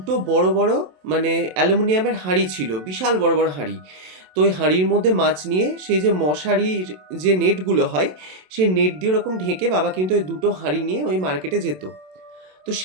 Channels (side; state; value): left; late; 27 ms